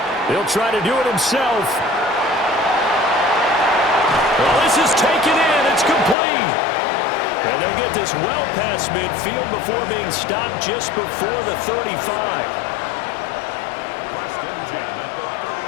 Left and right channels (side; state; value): right; drops out; at 6.2 s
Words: He'll try to do it himself. Well, this is taken in. It's complete. And they'll get this well past midfield before being stopped just before the 35.